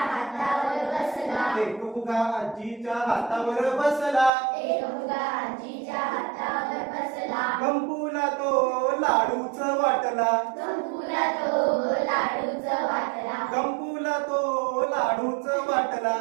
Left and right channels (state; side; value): drops out; left; at 4.3 s